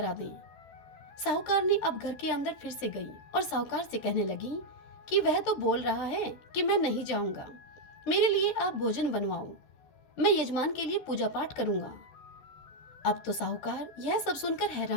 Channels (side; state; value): right; late; 13 ms